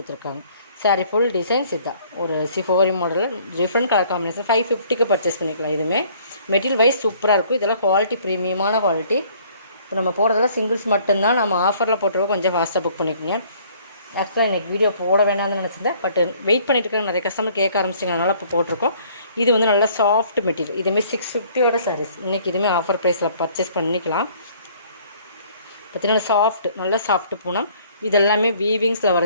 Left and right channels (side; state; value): both; inverted; correlation -0.58